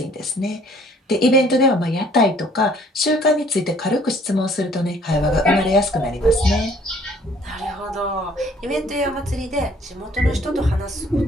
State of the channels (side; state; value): both; normal; correlation 0.58